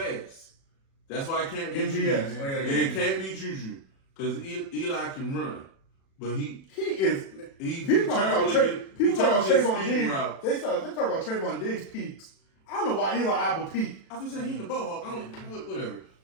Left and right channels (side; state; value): right; late; 36 ms